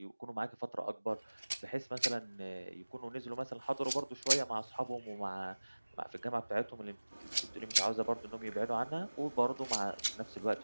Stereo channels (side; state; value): both; inverted; correlation -1.00